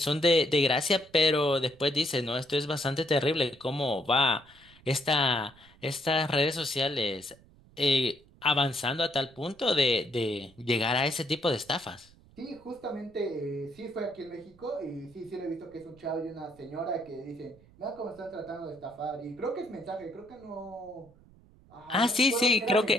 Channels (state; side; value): noise; right; rumble, 26 dB below the sound